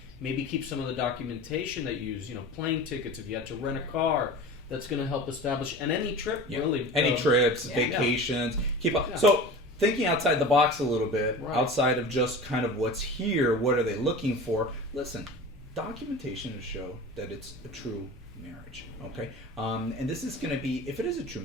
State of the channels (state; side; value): normal; both; correlation 0.35